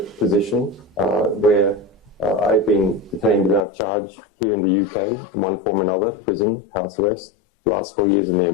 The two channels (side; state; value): right; drops out; at 3.6 s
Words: where I've been detained without charge here in the UK in one form or another, prison, house arrest, the last 4 years in the